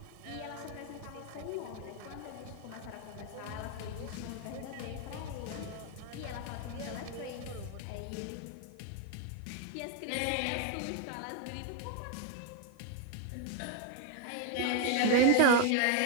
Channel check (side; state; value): both; different; correlation 0.01